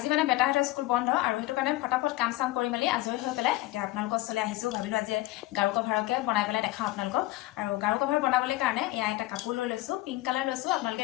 মানে বেটাহঁতৰ স্কুল বন্ধ আৰু সেইটো কাৰণে ফটাফট কাম চাম কৰি মেলি আজৰি হৈ পেলাই এতিয়া আপোনালোকৰ ওচৰলৈ আহিছোঁ। ভাবিলোঁ আজি গাৰু কভাৰকে বনাই পেলাই দেখাওঁ আপোনালোকক। আৰু গাৰু কভাৰ বনাবলৈ কাৰণে এয়া এটা কাপোৰ লৈ লৈছোঁ, পিংক কালাৰ লৈছোঁ।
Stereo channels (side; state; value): right; quieter; 17.7 dB